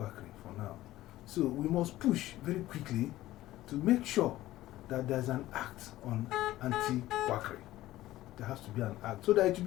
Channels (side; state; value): right; quieter; 15.6 dB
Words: for now. So we must push very quickly to make sure that there's an act on anti-quackery. There has to be an act so that it will